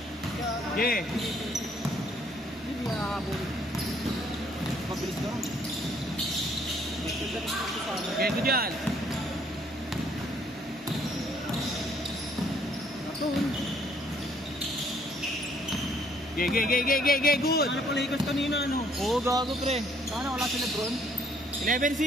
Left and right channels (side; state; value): both; normal; correlation 0.65